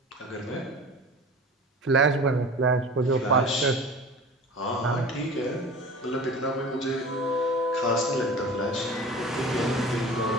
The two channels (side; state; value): both; normal; correlation 0.38